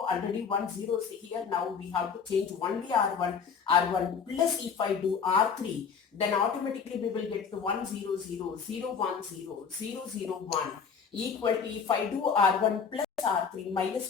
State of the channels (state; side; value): quieter; right; 6.3 dB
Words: 1 0 is here. Now we have to change only R1 plus if I do R3, then automatically we will get the 1 0 0 0 1 0 0 0 1 equal to, if I do R1 plus R3,